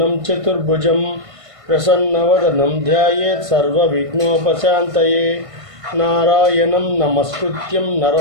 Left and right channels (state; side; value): late; left; 1.5 ms